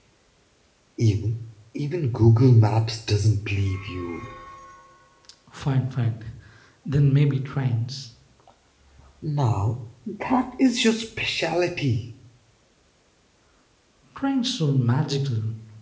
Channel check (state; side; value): identical; both; correlation 1.00